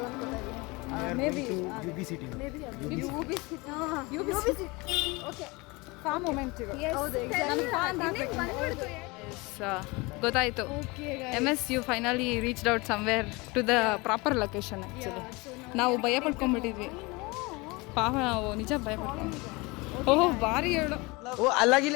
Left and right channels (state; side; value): quieter; right; 25.1 dB